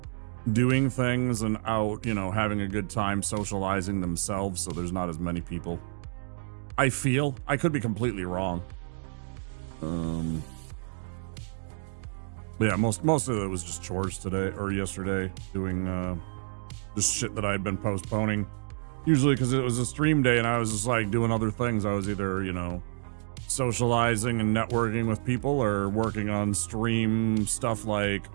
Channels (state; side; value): silent; left; digital silence